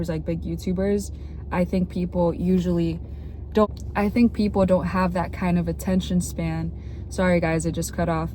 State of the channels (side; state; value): both; identical; correlation 1.00